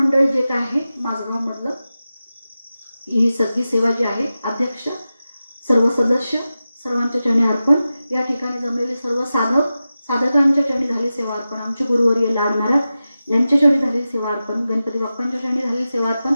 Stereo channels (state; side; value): inverted; both; correlation -0.93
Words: जे काय आहे माझगाव मधलं, ही सगळी सेवा जी आहे, अध्यक्ष, सर्व सदस्य, सर्वांच्या चरणी अर्पण. या ठिकाणी जमलेले सर्व साधकांच्या चरणी झाली सेवा अर्पण. आमचे गुरुवर्य लाड महाराज यांच्या चरणी झालेली सेवा अर्पण. गणपती बाप्पांच्या चरणी झालेली सेवा अर्पण.